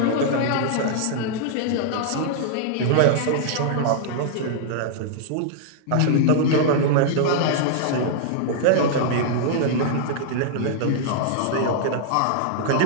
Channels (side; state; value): both; different; correlation -0.01